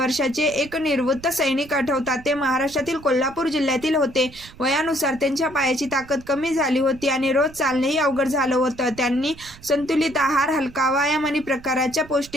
एक निवृत्त सैनिक आठवतात। ते महाराष्ट्रातील कोल्हापूर जिल्ह्यातील होते। वयानुसार त्यांच्या पायाची ताकद कमी झाली होती आणि रोज चालणेही अवघड झालं होतं। त्यांनी संतुलित आहार, हलका व्यायाम आणि प्रकारच्या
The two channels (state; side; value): noise; right; rumble, 20 dB below the sound